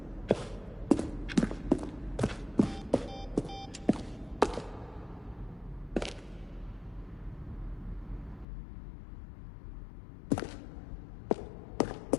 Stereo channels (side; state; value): right; drops out; at 8.5 s